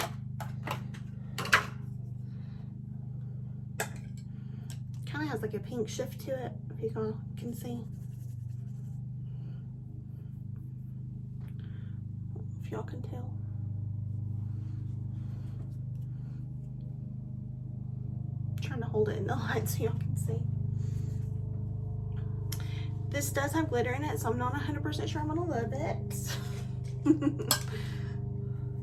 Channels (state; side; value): identical; both; correlation 1.00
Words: Kind of has like a pink shift to it, if you can see. If y'all can tell. I'm trying to hold it in the light so y'all can see. This does have glitter in it, so I'm not 100% sure I'm gonna love it.